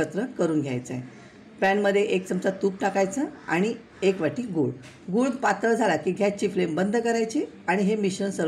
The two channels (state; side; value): identical; both; correlation 1.00